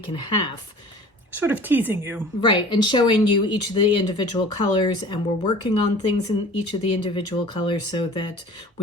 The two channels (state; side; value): normal; both; correlation 0.44